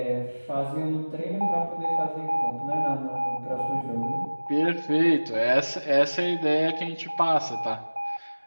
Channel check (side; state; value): both; inverted; correlation -1.00